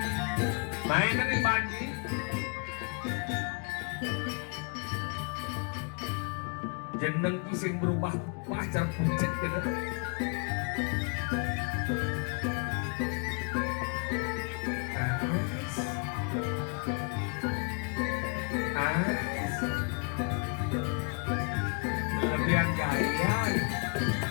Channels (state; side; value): quieter; right; 35.0 dB